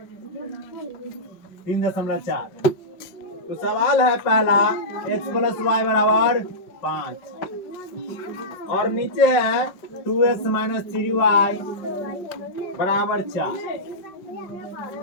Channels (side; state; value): right; late; 5.3 ms